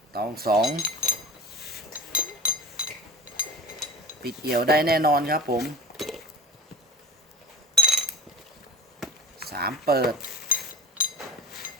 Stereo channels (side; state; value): both; normal; correlation 0.36